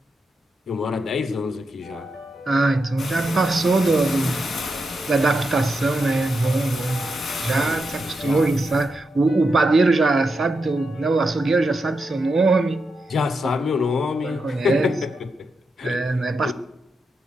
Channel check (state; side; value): normal; both; correlation 0.86